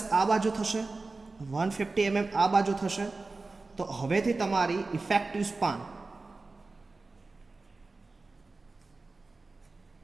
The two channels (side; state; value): left; quieter; 3.6 dB